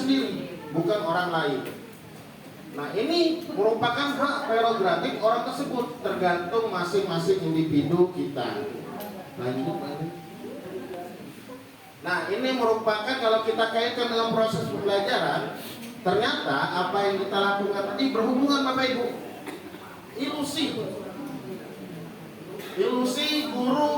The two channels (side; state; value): both; identical; correlation 1.00